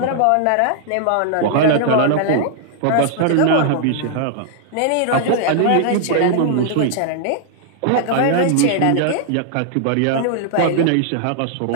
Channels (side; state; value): both; different; correlation 0.00